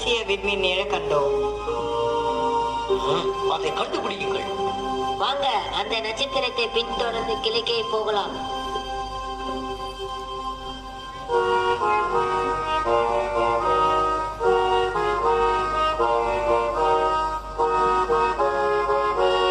விண்மீன் நிழ கண்டோம். அதை கண்டுபிடியுங்கள். வாங்க, அந்த நட்சத்திரத்தை பின்தொடர்ந்து கிழக்கே போகலாம்.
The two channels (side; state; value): both; identical; correlation 1.00